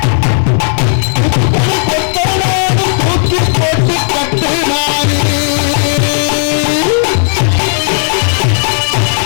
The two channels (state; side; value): silent; right; 71 dB below the other